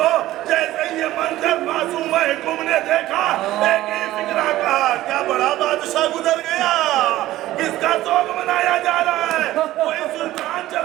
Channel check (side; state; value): left; quieter; 15.4 dB